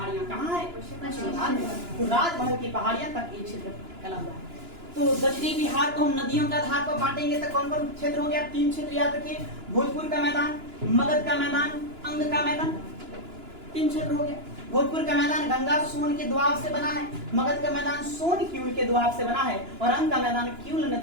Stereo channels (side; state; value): left; late; 2.9 ms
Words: कहाँ है, पश्चिम बंगाल में। तो राजमहल की पहाड़ियां तक ये क्षेत्र फैला हुआ है। तो दक्षिणी बिहार को हम नदियों के आधार पर बांटेंगे तो कौन कौन क्षेत्र हो गया, 3 क्षेत्र याद रखिए, भोजपुर का मैदान, मगध का मैदान, अंग का मैदान, 3 क्षेत्र हो गया। भोजपुर का मैदान गंगा सोन के दोआब से बना है, मगध का मैदान सोन क्यूल के दोआब से बना है, और अंग का मैदान क्यूल